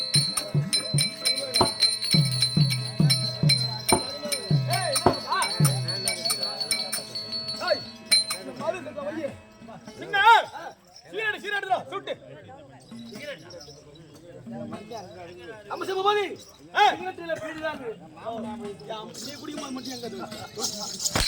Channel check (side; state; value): both; identical; correlation 1.00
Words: சீராடுதா சுட்டு அம்மா சிவபாதி சிகரெட்ல பீடிதாங்க நீ குடிக்கும்போது மட்டும் எங்க